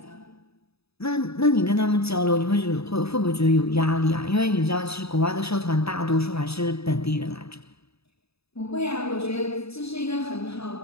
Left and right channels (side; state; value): right; late; 0.78 ms